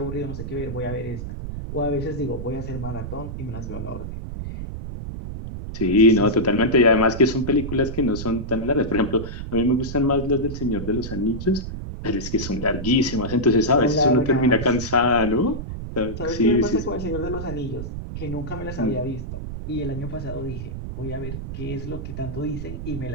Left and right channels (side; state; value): right; noise; rumble, 7 dB below the sound